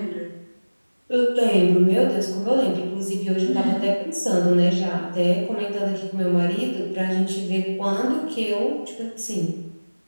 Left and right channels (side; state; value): both; inverted; correlation -1.00